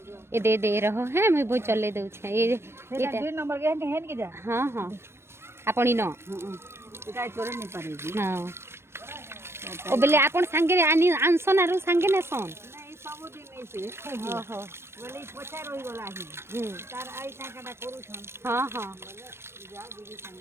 ये दे रहो है मैं वो चले दऊ छे ये नंबर के हेन के जा हाँ हाँ आपणी न काय चोरे नहीं पारेगी हाँ ओ बेले आपण संगे आनी आनसन आरो संगे ने सन नहीं सब दिन नहीं से ओहो बोले पछा रही गला ही तार आई टाकाटा करू छन हाँ हाँ जा दीदी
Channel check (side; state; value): left; late; 0.12 ms